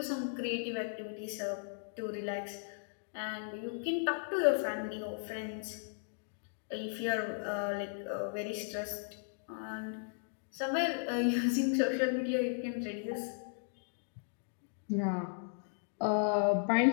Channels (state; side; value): silent; right; digital silence